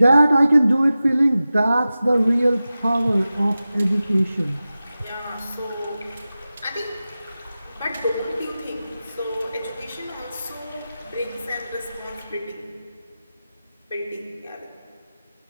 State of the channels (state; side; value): inverted; both; correlation -0.95